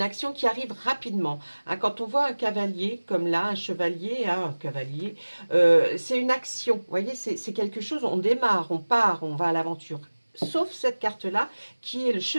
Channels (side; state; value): both; inverted; correlation -1.00